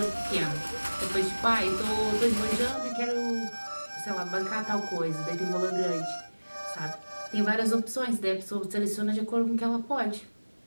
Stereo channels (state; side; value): inverted; both; correlation -1.00